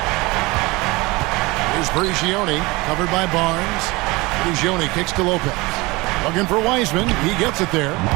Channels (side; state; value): left; quieter; 23.2 dB